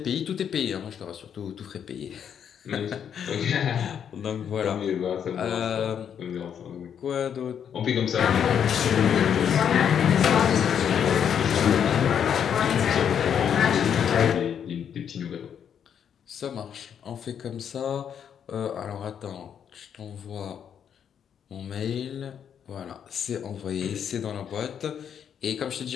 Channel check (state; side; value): quieter; right; 8.4 dB